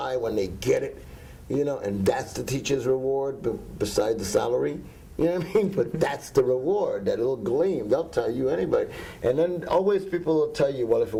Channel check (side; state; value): both; identical; correlation 1.00